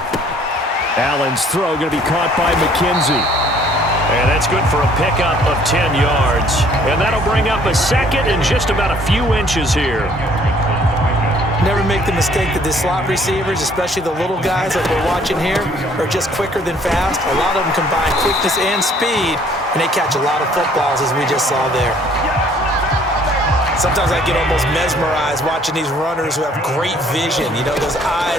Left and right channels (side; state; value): both; normal; correlation 0.59